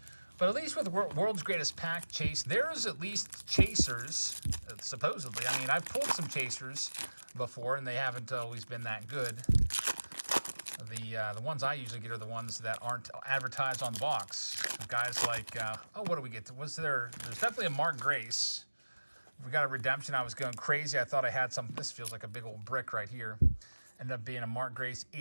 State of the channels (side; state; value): both; inverted; correlation -1.00